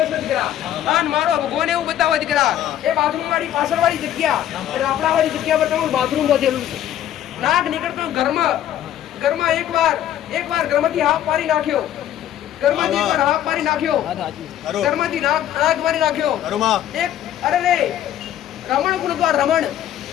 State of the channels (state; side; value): quieter; right; 11.5 dB